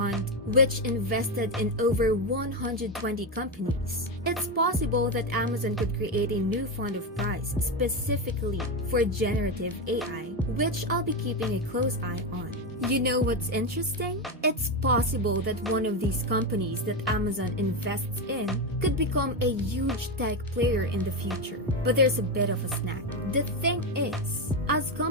which invested in over 120 companies. It's possible that Amazon could create a new fund of prize specifically for generative AI, which I'll be keeping a close eye on. You know what's interesting? It's possible that one of these companies that Amazon invests in could become a huge tech player in the future. But there's a bit of a snag. The thing is, as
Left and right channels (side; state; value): both; normal; correlation 0.12